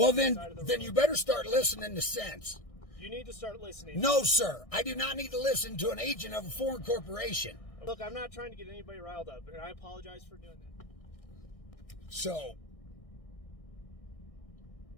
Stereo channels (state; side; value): late; right; 1.6 ms